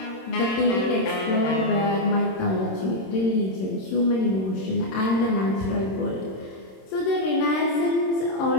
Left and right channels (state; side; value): late; right; 26 ms